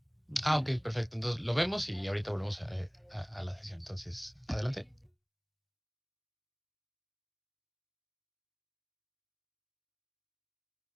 Ah, ok, perfecto. Entonces lo vemos y ahorita volvemos a la sesión. Entonces, adelante.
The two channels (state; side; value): identical; both; correlation 1.00